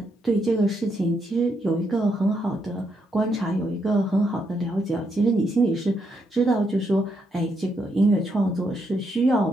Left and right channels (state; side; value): normal; both; correlation 0.78